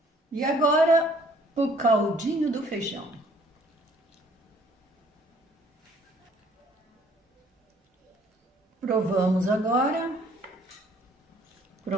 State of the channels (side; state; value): both; normal; correlation 0.59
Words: E agora o caldinho do feijão. Provamos agora.